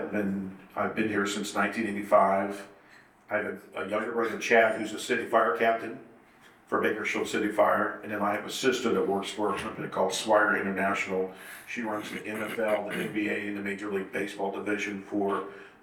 been here since 1985. I have a younger brother, Chad, who's a city fire captain. for Bakersfield City Fire. And then I have a sister that works for a company called Swire International. She runs the NFL, the NBA, and the Major League Baseball division for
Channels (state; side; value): identical; both; correlation 1.00